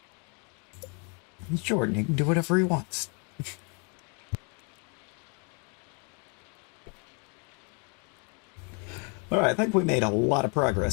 He's Jordan, he can do whatever he wants. Alright, I think we made a lot of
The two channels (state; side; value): quieter; right; 36.7 dB